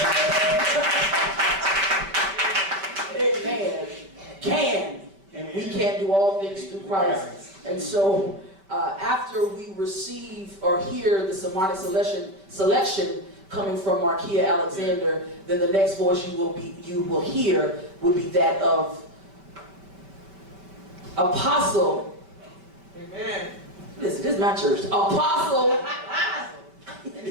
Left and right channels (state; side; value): late; left; 5.2 ms